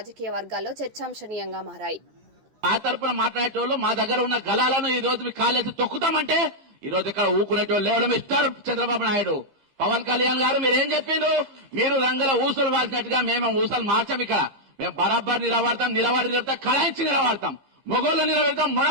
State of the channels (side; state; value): left; late; 13 ms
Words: వర్గాల్లో చర్చాంశనీయంగా మారాయి. ఆ తరపున మాట్లాడేటోళ్ళు మా దగ్గర ఉన్న గలాలను ఈ రోజు కాలేజీ తొక్కుతామంటే ఈ రోజు ఇక్కడ ఊకునేటోళ్ళు ఎవరు మిస్టర్ చంద్రబాబు నాయుడు, పవన్ కళ్యాణ్ గారు మీరేం చెప్పిండ్రు? మీరు రంగుల ఊసలు వాసినట్టుగా మేము ఊసలు మార్చాం. ఇక్కడ మేము బరాబర్ నిలబడతాం, కళాయించి నిలబడతాం, మొగోళ్ళు నిలబడతాం,